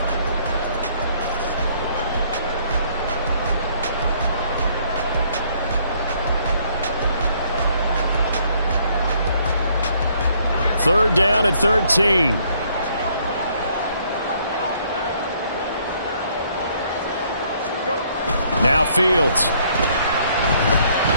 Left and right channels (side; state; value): both; inverted; correlation -0.65